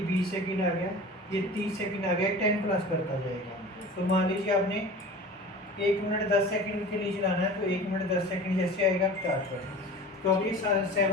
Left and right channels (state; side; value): normal; both; correlation 0.38